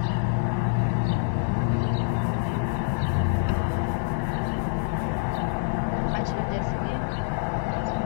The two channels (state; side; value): silent; right; 61 dB below the other